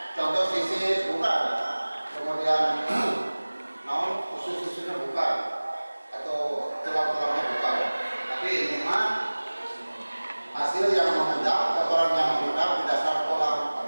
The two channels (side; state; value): both; inverted; correlation -1.00